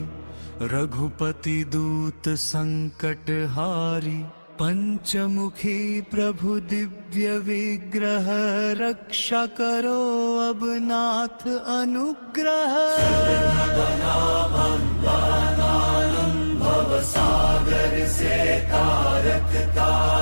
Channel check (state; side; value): inverted; both; correlation -1.00